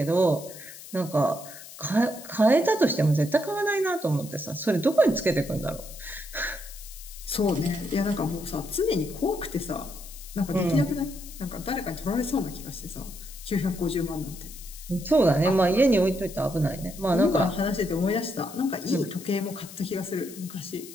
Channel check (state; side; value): noise; left; hiss, 15 dB below the sound